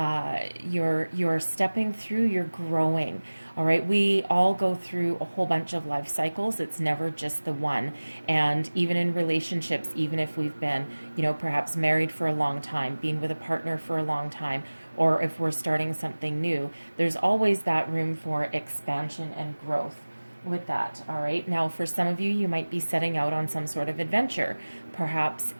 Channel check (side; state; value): both; inverted; correlation -1.00